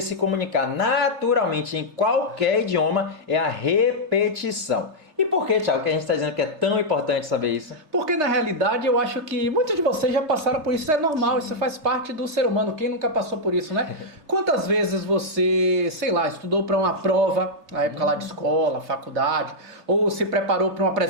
comunicar naturalmente em qualquer idioma é a repetição. E por que, Thiago, que a gente está dizendo que é tão importante saber isso? Porque na realidade eu acho que muitos de vocês já passaram por isso, isso é normal, isso faz parte do ser humano, quem nunca passou por isso, né? Quantas vezes você, sei lá, estudou para uma prova, na época lá de escola, faculdade, ou se preparou para uma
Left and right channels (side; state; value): left; late; 3.3 ms